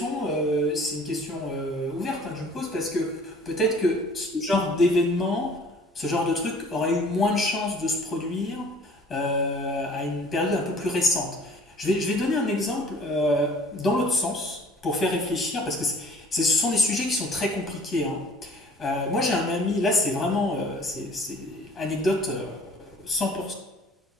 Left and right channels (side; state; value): both; normal; correlation 0.51